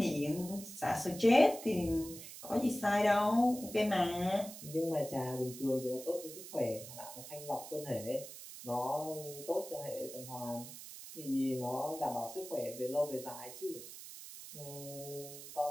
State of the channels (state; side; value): noise; right; hiss, 13 dB below the sound